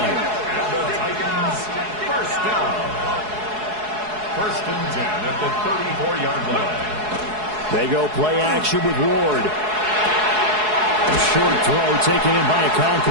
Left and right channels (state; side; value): late; left; 4.7 ms